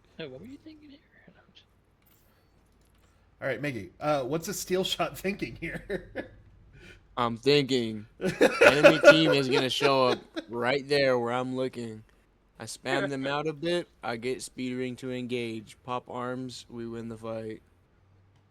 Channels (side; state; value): both; identical; correlation 1.00